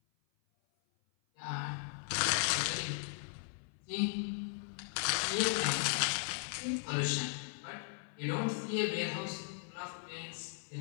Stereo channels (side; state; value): right; silent; 53 dB below the other